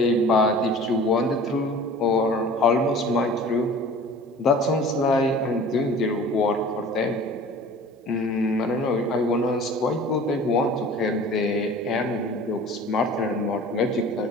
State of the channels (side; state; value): both; normal; correlation 0.43